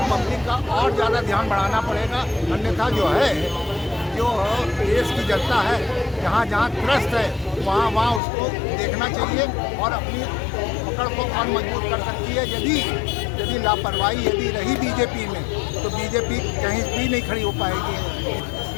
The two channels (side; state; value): right; drops out; at 8.2 s